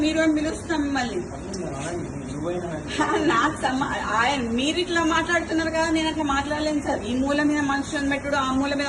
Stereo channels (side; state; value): both; identical; correlation 1.00